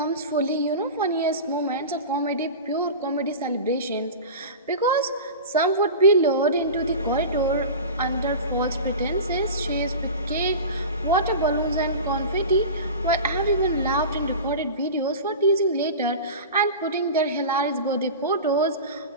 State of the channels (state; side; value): inverted; both; correlation -0.31